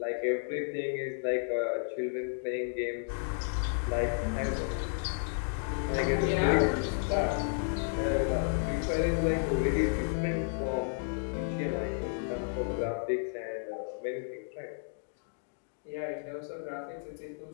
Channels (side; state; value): right; silent; digital silence